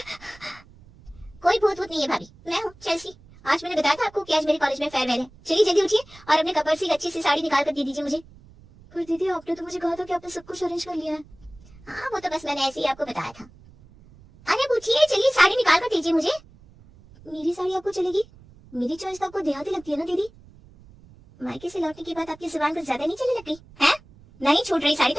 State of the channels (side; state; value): right; noise; rumble, 24 dB below the sound